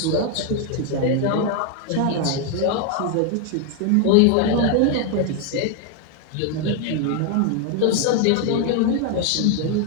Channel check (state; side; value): different; both; correlation 0.01